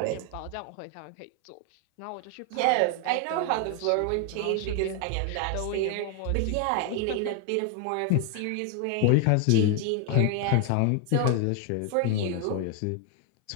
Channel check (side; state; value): both; different; correlation 0.00